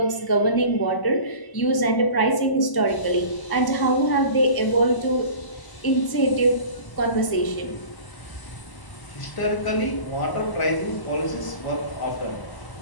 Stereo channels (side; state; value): right; late; 1.0 ms